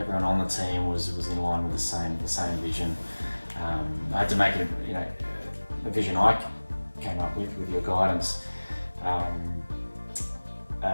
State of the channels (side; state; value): both; inverted; correlation -1.00